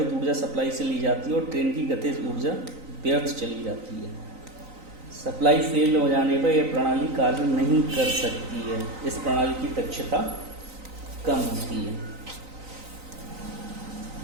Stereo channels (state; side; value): late; left; 3.9 ms